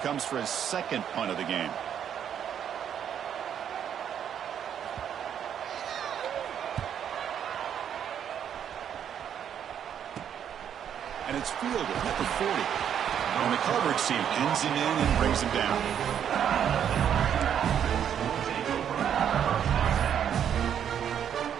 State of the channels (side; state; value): left; quieter; 9.0 dB